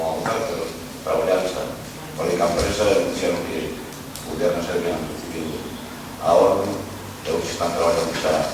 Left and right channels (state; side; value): identical; both; correlation 1.00